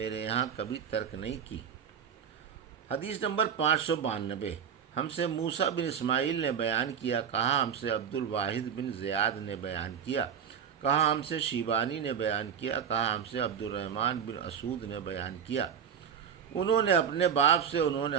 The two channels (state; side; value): quieter; left; 7.9 dB